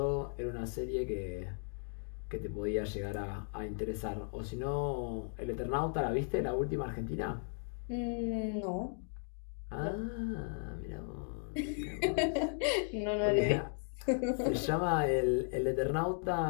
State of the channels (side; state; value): right; silent; 54 dB below the other